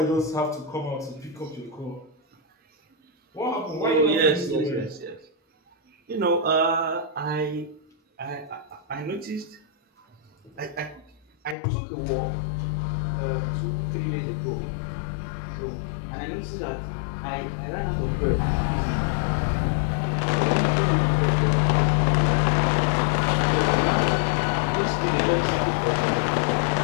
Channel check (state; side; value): drops out; right; at 11.6 s